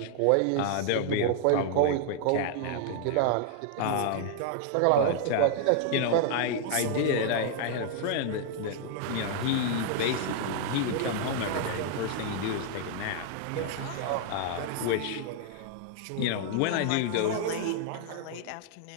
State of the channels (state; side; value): different; both; correlation 0.00